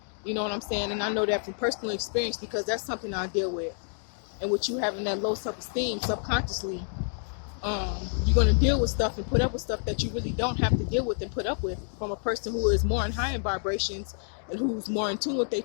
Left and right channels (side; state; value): right; silent; 59 dB below the other